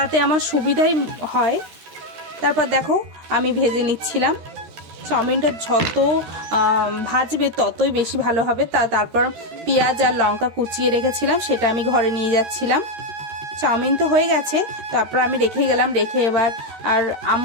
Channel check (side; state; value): left; late; 13 ms